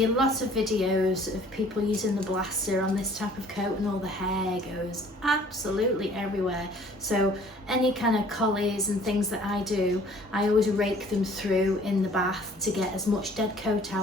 a lot of videos of people using the blaster on this type of coat and all the hair goes absolutely everywhere. So any kind of collies and things that I do, I always rake them through in the bath to get as much dead coat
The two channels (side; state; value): both; normal; correlation 0.54